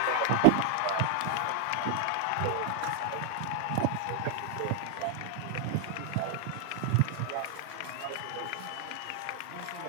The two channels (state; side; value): different; both; correlation 0.00